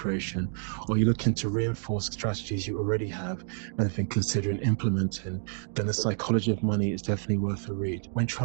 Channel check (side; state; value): left; silent; 59 dB below the other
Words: or you're looking to reinforce strategies you already have and have been considering implementing, then The Psychology of Money is definitely worth a read. When